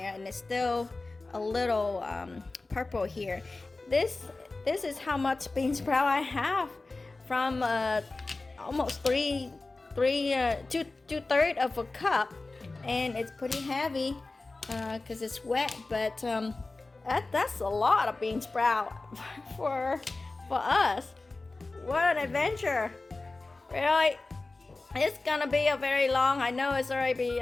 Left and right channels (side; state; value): right; quieter; 3.4 dB